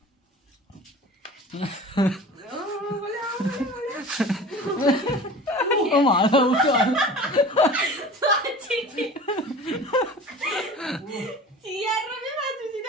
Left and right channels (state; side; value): normal; both; correlation 0.39